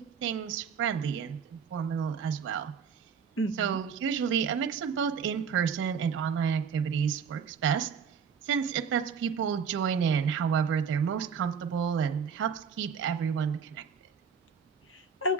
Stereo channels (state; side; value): quieter; left; 6.5 dB